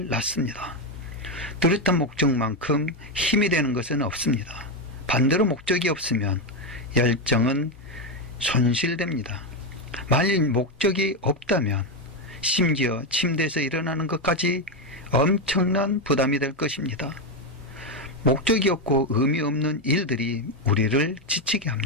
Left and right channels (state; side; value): normal; both; correlation 0.08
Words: 낳습니다. 뚜렷한 목적만큼 힘이 되는 것은 없습니다. 반대로 목적이 없으면 열정은 손실됩니다. 만일 목적이 없다면 심지어 침대에서 일어나는 것까지 엄청난 부담이 될 것입니다. 목적이 없고 의미 없는 일들이 우리를 지치게